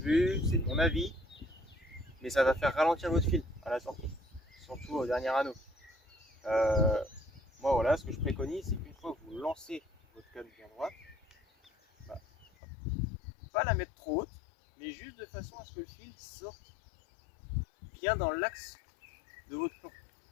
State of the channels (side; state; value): right; drops out; at 12.5 s